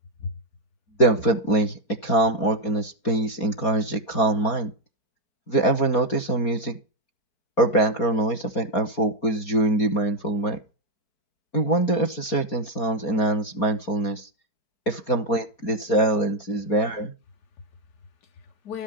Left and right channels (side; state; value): right; late; 4.2 ms